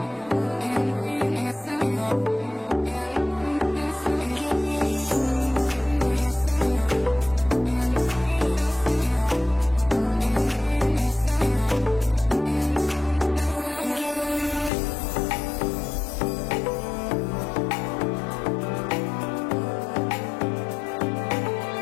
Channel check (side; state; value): right; drops out; at 14.7 s